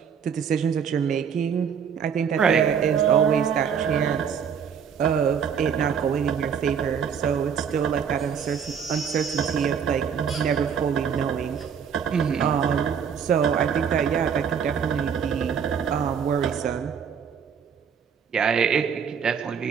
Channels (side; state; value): left; quieter; 7.3 dB